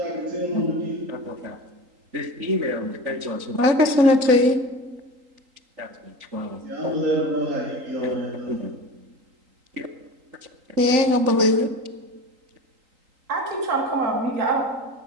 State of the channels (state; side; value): late; left; 3.8 ms